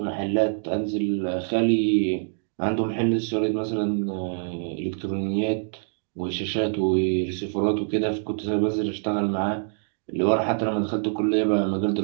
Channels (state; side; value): silent; left; digital silence